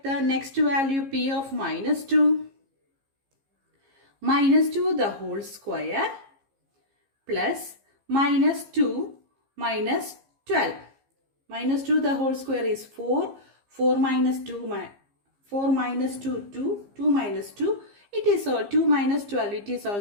the next value, p of minus 2. Minus 2 the whole square plus minus 2 minus 12. Minus 2 the whole square is 4. 4 minus 2, 4 minus 2, 2. 2 minus 2. It is 2 minus 12. It is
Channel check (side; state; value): left; late; 15 ms